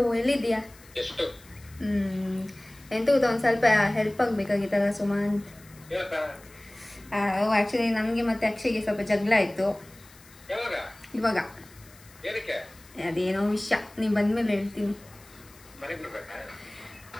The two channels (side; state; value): left; noise; hiss, 24 dB below the sound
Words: ಎಲ್ಲಿದ್ದೀಯಾ? ಎಂತ ಗೊತ್ತಾ, ಒಂದು ಸ್ವಲ್ಪ ಹೆಲ್ಪ್ ಆಗಬೇಕಾಗಿತ್ತಲ್ಲ ಸುಮಂತ್. ಆ್ಯಕ್ಚುಲಿ ನಮಗೆ ಮತ್ತೆ ಅಕ್ಷಯ್ಗೆ ಸ್ವಲ್ಪ ಜಗಳ ಆಯಿತು ಇವಾಗ. ಅದೇನೋ ವಿಷಯ, ನೀವು ಬಂದ್ಮೇಲೆ ಹೇಳ್ತೀನಿ.